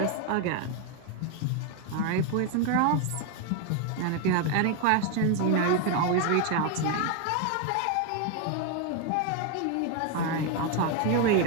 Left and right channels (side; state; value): both; different; correlation 0.01